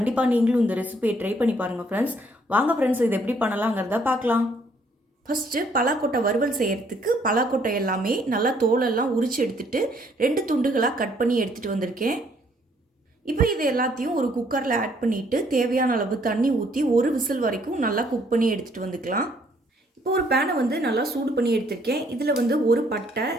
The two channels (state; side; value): normal; both; correlation 0.65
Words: நீங்களும் இந்த ரெசிபியை ட்ரை பண்ணி பாருங்கள் ஃப்ரெண்ட்ஸ். வாங்க ஃப்ரெண்ட்ஸ், இது எப்படி பண்ணலாங்கிறத பார்க்கலாம். ஃபஸ்ட்டு பலாக்கொட்டை வறுவல் செய்கிறதுக்கு பலாக்கொட்டை எல்லாமே நல்லா தோலெல்லாம் உரித்து எடுத்துகிட்டு 2 துண்டுகளாக கட் பண்ணி எடுத்துகிட்டு வந்திருக்கேன். இப்போ இது எல்லாத்தையும் ஒரு குக்கரில் ஆட் பண்ணிவிட்டு தேவையான அளவு தண்ணி ஊற்றி ஒரு விசில் வரைக்கும் நல்லா குக் பண்ணி எடுத்துகிட்டு வந்துக்கலாம். இப்போ ஒரு பேனை நல்லா சூடு பண்ணி எடுத்திருக்கேன். இதில் ஒரு பட்டை,